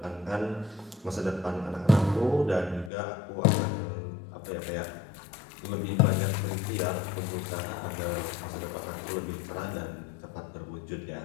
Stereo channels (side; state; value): right; drops out; at 2.9 s